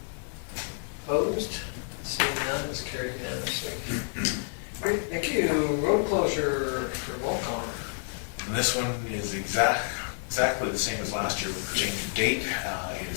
Opposed? Seeing none, it's carried unanimously. Great, thank you. Road closure for Volcom. And this one is exactly the same as last year with the change of date. It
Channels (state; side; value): silent; right; 58 dB below the other